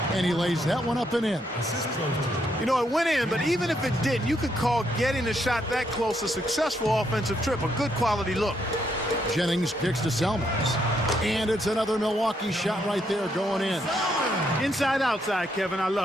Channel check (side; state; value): both; normal; correlation 0.75